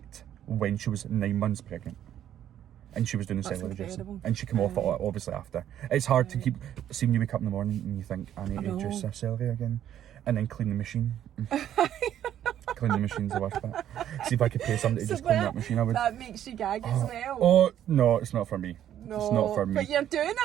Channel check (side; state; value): left; quieter; 10.9 dB